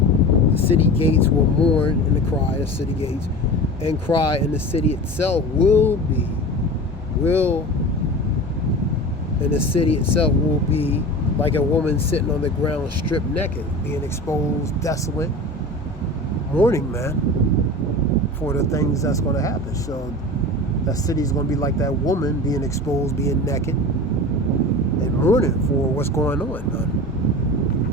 The city gates will mourn in the cry, the city gates, and cry, and the city itself and the city itself will be like a woman sitting on the ground, stripped naked, being exposed, desolate, mourning, man, for the things that's going to happen. So that city is going to be like that woman being exposed, being naked, and mourning for what's going on, man.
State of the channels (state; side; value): normal; both; correlation 0.33